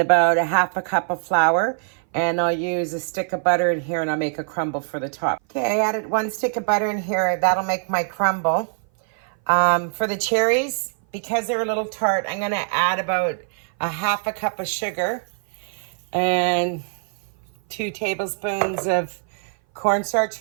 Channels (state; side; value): silent; left; 59 dB below the other